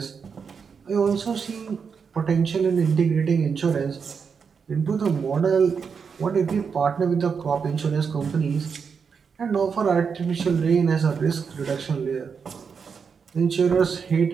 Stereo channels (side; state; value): left; quieter; 6.0 dB